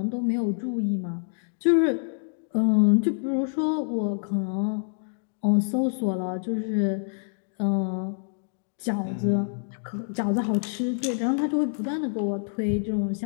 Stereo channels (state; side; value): silent; right; digital silence